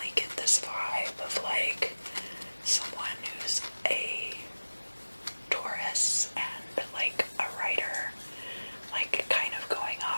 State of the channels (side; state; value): both; inverted; correlation -1.00